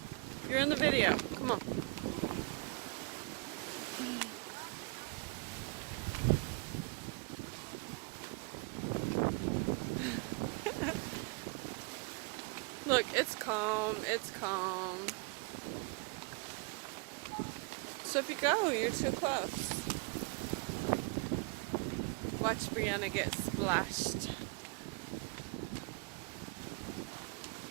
You're in the video. Come on. Look, it's calm. It's calm. Sophie, go. You're too close. Watch Brianna get splashed.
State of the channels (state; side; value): quieter; left; 30.4 dB